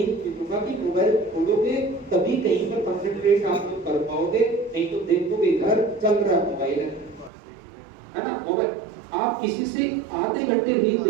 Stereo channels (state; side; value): drops out; left; at 7.3 s